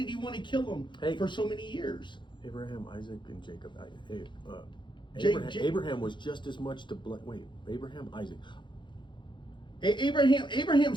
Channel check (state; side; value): late; right; 0.23 ms